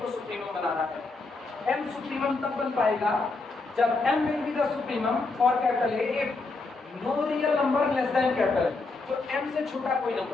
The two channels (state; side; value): quieter; right; 3.6 dB